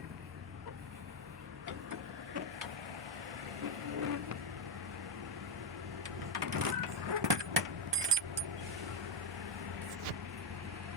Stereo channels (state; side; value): normal; both; correlation 0.04